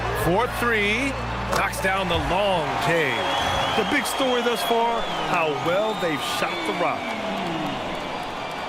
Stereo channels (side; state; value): both; identical; correlation 1.00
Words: 4-3. Knocks down the long K. The big story thus far, how well they've shot the rock.